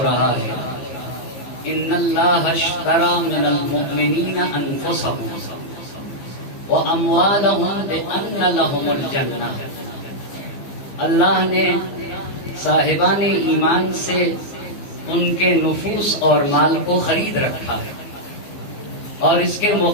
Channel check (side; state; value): right; late; 15 ms